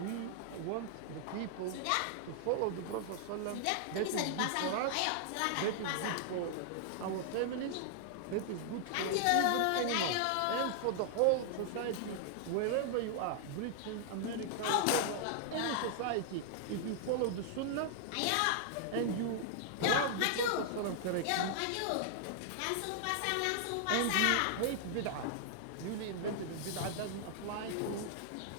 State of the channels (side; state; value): both; different; correlation -0.01